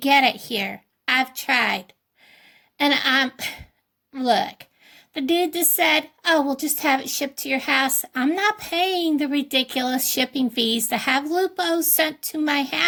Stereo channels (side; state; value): both; identical; correlation 1.00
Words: get it here. I've tried. And look, the dude just said, oh, we'll just have it shipped to your house. I'm not paying the ridiculous shipping fees to have lupos sent to my